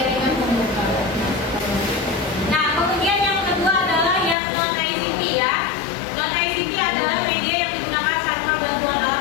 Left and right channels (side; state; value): right; drops out; at 4.4 s